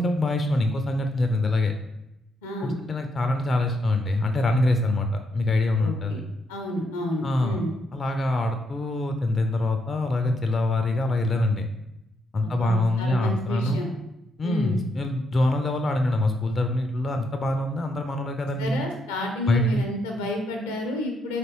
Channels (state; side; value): normal; both; correlation 0.78